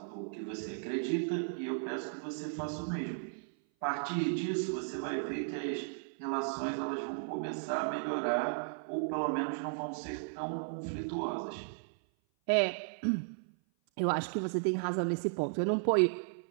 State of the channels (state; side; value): silent; left; 54 dB below the other